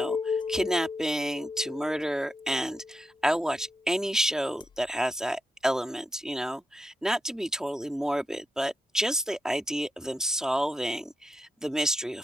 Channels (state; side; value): normal; both; correlation 0.85